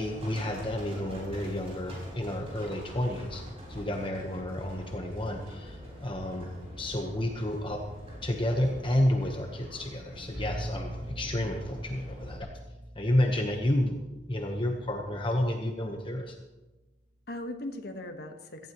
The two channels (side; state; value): both; normal; correlation 0.82